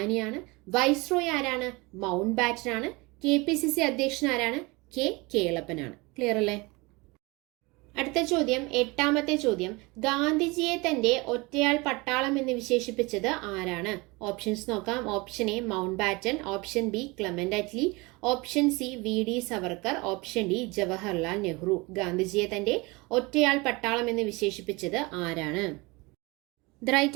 വൈസ്രോയ് ആരാണ്? മൗണ്ട് ബാറ്റൻ ആണ്. KPCC അധ്യക്ഷൻ ആരാണ്? കേളപ്പനാണ്. ക്ലിയർ അല്ലേ? അടുത്ത ചോദ്യം, 8ാമത്തെ ചോദ്യം. ഗാന്ധിജിയെ തന്റെ ഒറ്റയാൾ പട്ടാളം എന്ന് വിശേഷിപ്പിച്ചത് ആരാണ്? ഓപ്ഷൻസ് നോക്കാം. Option A Mountbatten, option B Clement Attlee, option C VD Savarkar, option D Jawaharlal Nehru. ഗാന്ധിജിയെ തന്റെ ഒറ്റയാൾ പട്ടാളം എന്ന് വിശേഷിപ്പിച്ചത് ആരാണ്? The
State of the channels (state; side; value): quieter; left; 25.0 dB